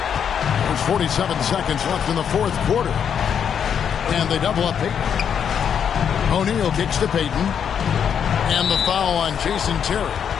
There's 47 seconds left in the 4th quarter. And they double up Payton. O'Neal kicks to Payton. And the foul on Jason Terry.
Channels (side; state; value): right; quieter; 7.9 dB